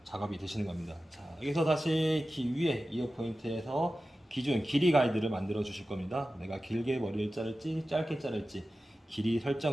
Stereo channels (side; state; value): both; normal; correlation 0.95